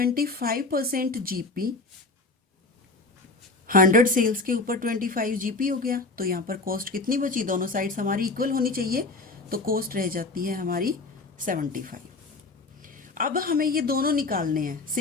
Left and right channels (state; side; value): quieter; right; 3.4 dB